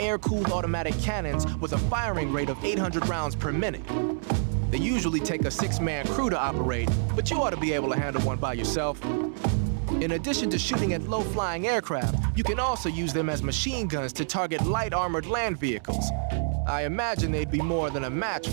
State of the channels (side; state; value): left; silent; 60 dB below the other